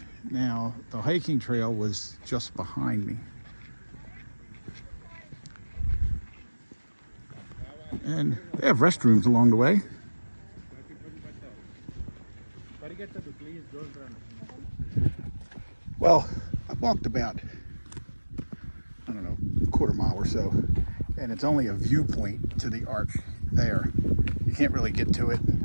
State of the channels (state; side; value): inverted; both; correlation -1.00